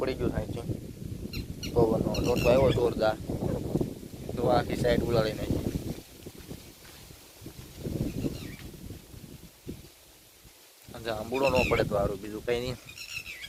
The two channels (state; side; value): identical; both; correlation 1.00